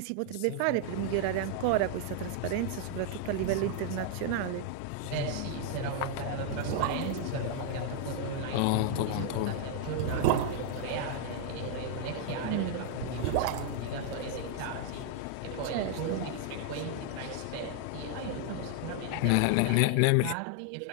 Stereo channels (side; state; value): both; different; correlation -0.01